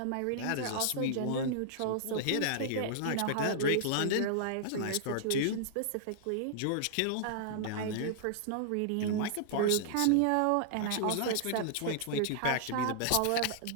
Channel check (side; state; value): both; different; correlation -0.01